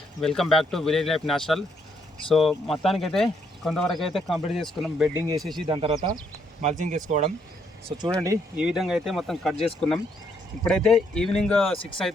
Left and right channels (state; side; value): normal; both; correlation 0.73